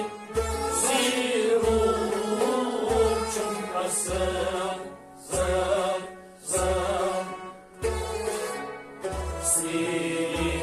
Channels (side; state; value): both; identical; correlation 1.00